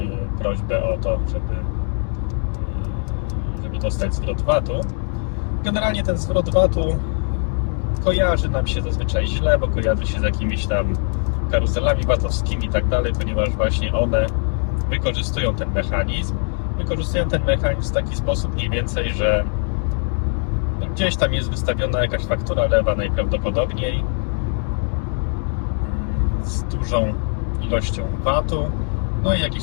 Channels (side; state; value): right; silent; 56 dB below the other